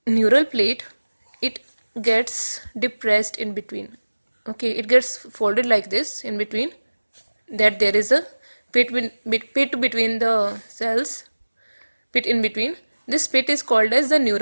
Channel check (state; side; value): inverted; both; correlation -1.00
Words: neural plate, it gets depressed in between. Okay, it gets folded like this in between, that there is a pit between the cells, pit in between. This pit is called as the